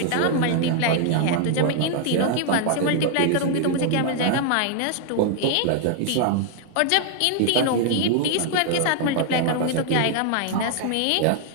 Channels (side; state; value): both; different; correlation 0.00